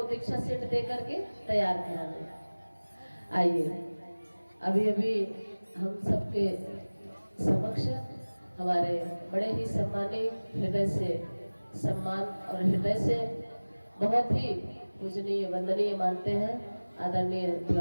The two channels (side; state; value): both; inverted; correlation -1.00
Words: दीक्षा सेट दे करके तैयार करा दें। आइए, अभी अभी हम सबके समक्ष हमारे बड़े ही सम्मानित, हृदय से सम्मान और हृदय से बहुत ही पूजनीय वंदनीय मानते हैं आदरणीय